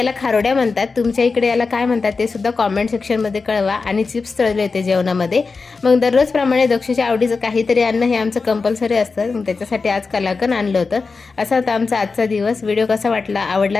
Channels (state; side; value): quieter; right; 4.4 dB